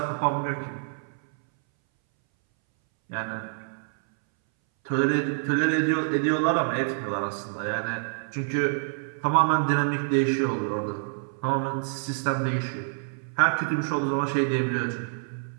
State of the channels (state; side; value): silent; left; 60 dB below the other